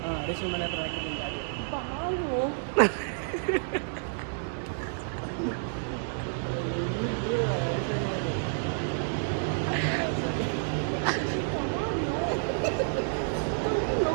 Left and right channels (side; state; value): left; silent; 58 dB below the other